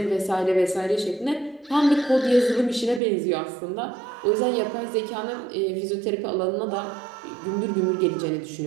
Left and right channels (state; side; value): drops out; left; at 3.0 s